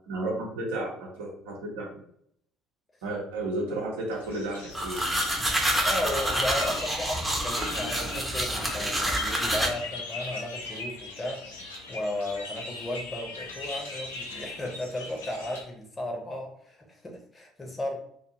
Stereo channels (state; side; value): normal; both; correlation 0.67